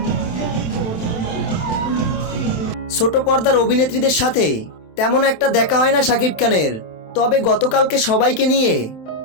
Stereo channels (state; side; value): late; right; 27 ms